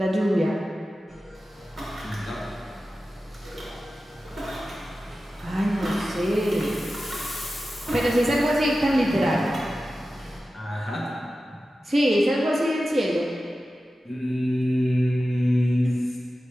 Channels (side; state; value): both; normal; correlation 0.94